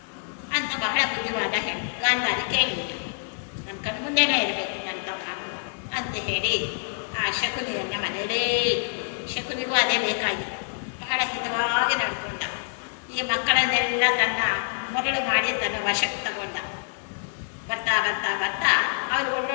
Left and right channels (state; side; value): silent; right; digital silence